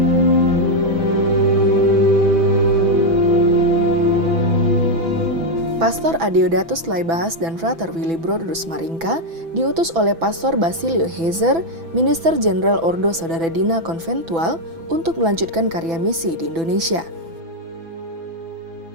Pastor Adeodatus Laibahas dan Frater Willy Broders Maringka diutus oleh Pastor Basilio Heiser, Minister Jenderal Ordo Saudara Dina Konventual, untuk melanjutkan karya misi di Indonesia.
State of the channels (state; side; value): late; left; 6.0 ms